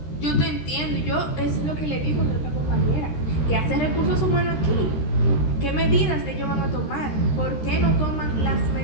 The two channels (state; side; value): late; right; 13 ms